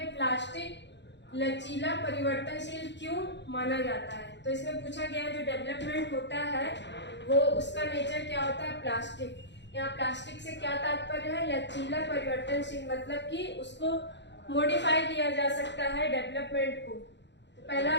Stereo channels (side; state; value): right; late; 0.52 ms